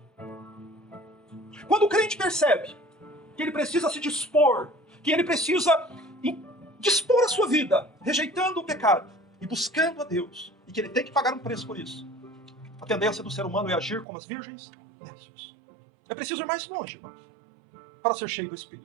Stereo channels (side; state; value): left; drops out; at 14.1 s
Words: Quando o crente percebe que ele precisa se dispor, que ele precisa dispor a sua vida, rejeitando o pecado e buscando a Deus, e que ele tem que pagar um preço por isso, a tendência do ser humano é agir como as virgens nécios. É preciso ir mais longe, irmãos, para ser cheio do